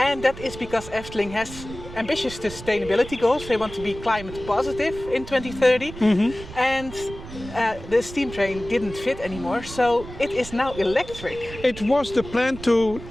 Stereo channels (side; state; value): right; noise; rumble, 13 dB below the sound